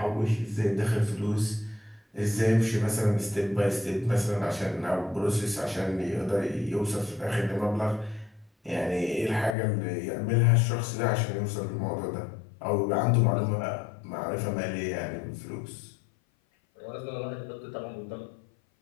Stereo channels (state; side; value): drops out; right; at 9.6 s